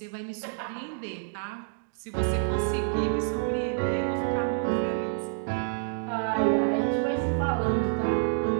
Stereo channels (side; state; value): left; silent; digital silence